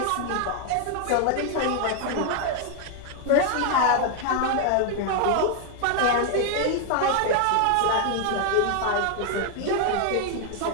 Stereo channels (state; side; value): different; both; correlation 0.00